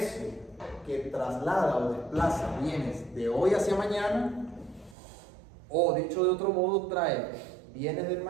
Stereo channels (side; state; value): left; drops out; at 5.0 s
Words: que traslada o desplaza bienes de hoy hacia mañana, o dicho de otro modo, trae bienes del